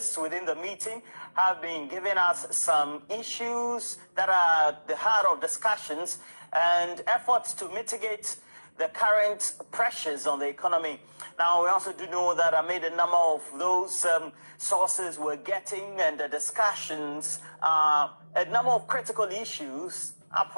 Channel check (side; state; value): both; inverted; correlation -1.00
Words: within the meeting have been giving us some issues that are the heart of discussions and efforts to mitigate the current pressures on the economy. Now, we also do know that amid a number of those sources we're getting and the discussions, a number of critical issues,